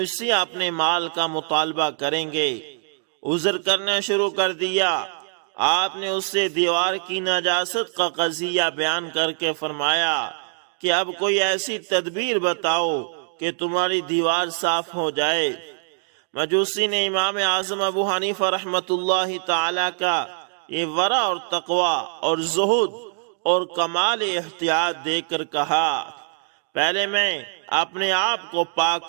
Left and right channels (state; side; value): silent; left; digital silence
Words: سے اپنے مال کا مطالبہ کریں گے۔ عذر کرنا شروع کر دیا۔ آپ نے اس سے دیوار کی نجاست کا قضیہ بیان کر کے فرمایا کہ اب کوئی ایسی تدبیر بتاؤ کہ تمہاری دیوار صاف ہو جائے۔ مجوسی نے امام اعظم ابو حنیفہ رحمۃ اللہ تعالی کا یہ ورع اور تقوی اور زہد اور کمال احتیاط دیکھ کر کہا، پہلے میں اپنے آپ کو پاک